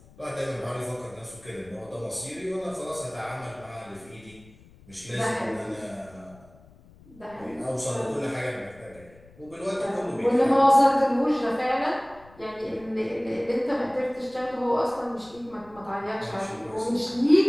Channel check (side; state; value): left; noise; rumble, 24 dB below the sound